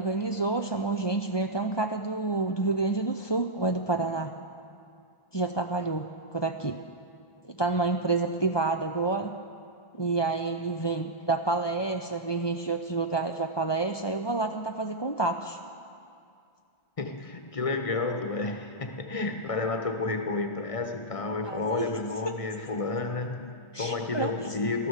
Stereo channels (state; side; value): late; right; 1.2 ms